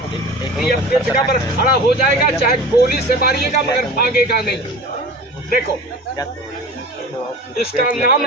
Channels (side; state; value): both; normal; correlation 0.36